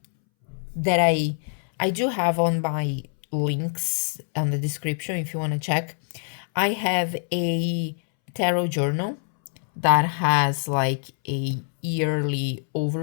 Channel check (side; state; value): right; silent; 62 dB below the other